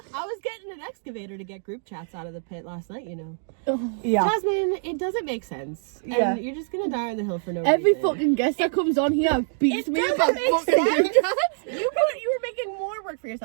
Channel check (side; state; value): left; silent; digital silence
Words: I was getting an excavator to get group chats out of the pit last night, you know. yeah, Jasmine, it doesn't make sense. Yeah. And you're just gonna die on the hill for no Every reason. fucking guest that comes on here beats It me doesn't about make fucking sense. group chats. You were making more work for